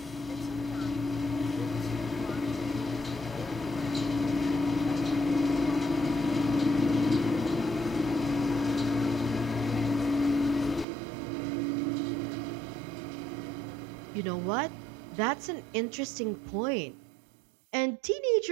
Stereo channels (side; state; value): left; drops out; at 10.9 s